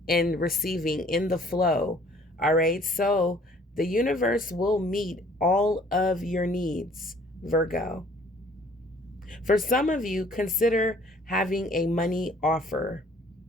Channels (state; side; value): normal; both; correlation 0.57